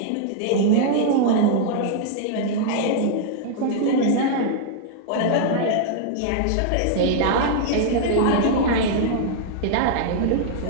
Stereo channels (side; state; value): both; different; correlation -0.01